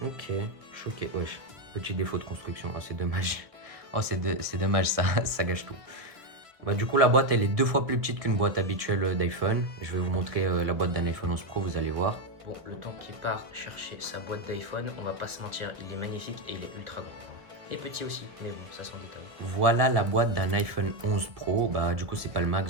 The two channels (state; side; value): late; left; 1.7 ms